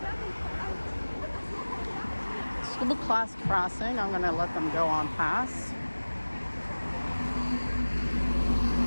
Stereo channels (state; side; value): inverted; both; correlation -1.00